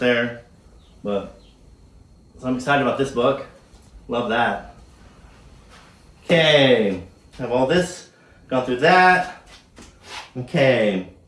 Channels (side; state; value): both; identical; correlation 1.00